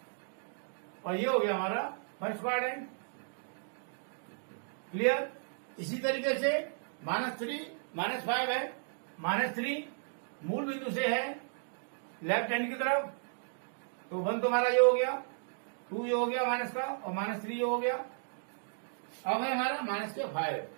और ये हो गया हमारा फर्स्ट क्वाड्रेंट। क्लियर। इसी तरीके से -3 -5 है, -3 मूल बिंदु से है लेफ्ट हैंड की तरफ, तो 1 तो हमारा ये हो गया, 2 ये हो गया माइनस का, और -3 ये हो गया। अब है हमारा -5,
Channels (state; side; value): silent; left; digital silence